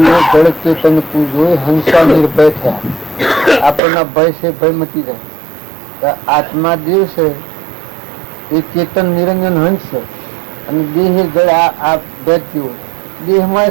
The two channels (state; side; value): drops out; left; at 3.8 s